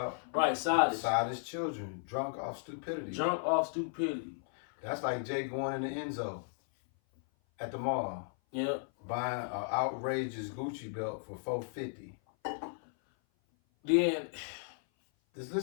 Right, sottish. Sottish children, drunk off stupidity. Drunk off stupidity. That's like Jake going in the Enzo at the mall. Yeah. Buying an outrageous Gucci belt for $450. Then, just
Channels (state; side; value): silent; right; 54 dB below the other